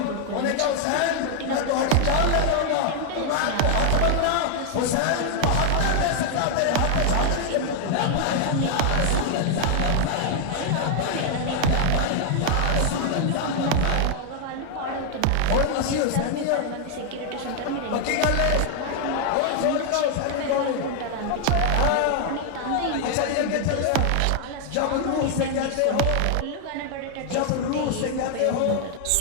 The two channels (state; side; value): different; both; correlation 0.00